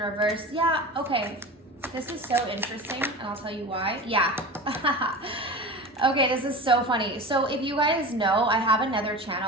Yeah, okay. This is so interesting, and I'll tell you why. Yeah. Okay, this is so funny. So if you guys know, I have another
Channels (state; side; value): normal; both; correlation 0.31